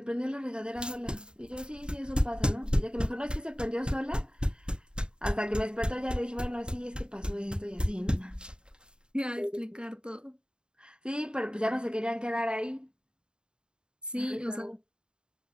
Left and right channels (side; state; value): left; late; 0.049 ms